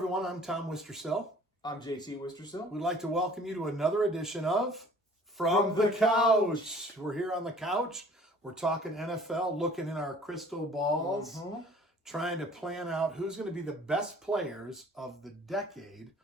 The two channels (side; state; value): both; normal; correlation 0.52